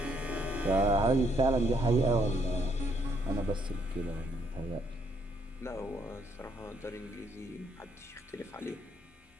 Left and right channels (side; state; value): both; normal; correlation 0.71